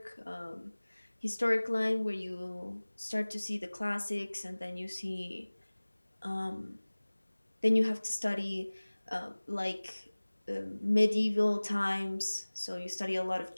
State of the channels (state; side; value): inverted; both; correlation -1.00